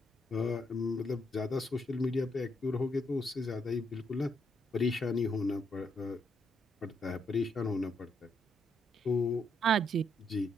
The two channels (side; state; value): both; normal; correlation 0.76